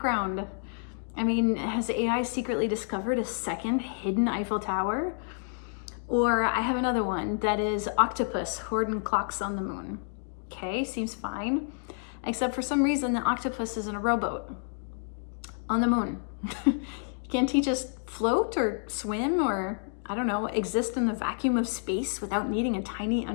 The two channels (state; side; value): silent; right; 58 dB below the other